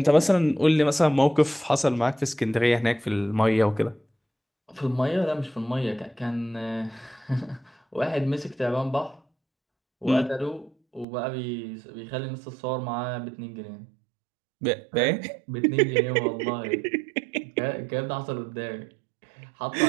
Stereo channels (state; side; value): drops out; left; at 11.1 s